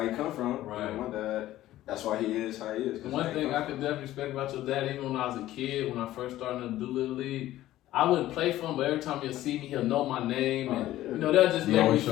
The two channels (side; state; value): right; quieter; 14.6 dB